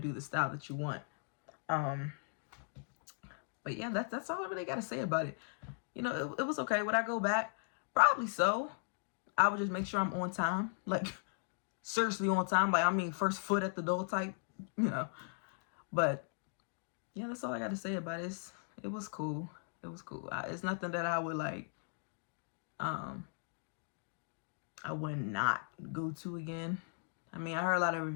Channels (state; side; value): silent; right; digital silence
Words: the style that you want. But yeah, that's all I really gotta say about it. You know, it was okay. Would I go back? Probably so. I would just make sure I'm on time, like seriously on time. Like I mean, first foot at the door type, you know. But yeah, that's all I got to say about it. It was cool. It was cool. It's nothing that I would like. I would not go to again. I mean, I heard a lot of